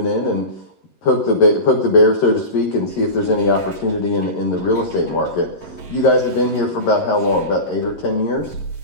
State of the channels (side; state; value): right; late; 11 ms